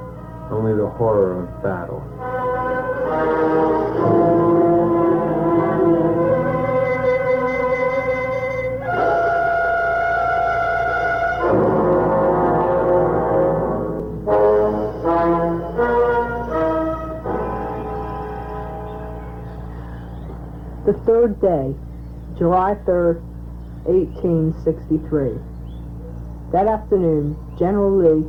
only the horror of battle. The third day, July 3rd, 1863. That afternoon, General Lee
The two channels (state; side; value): identical; both; correlation 1.00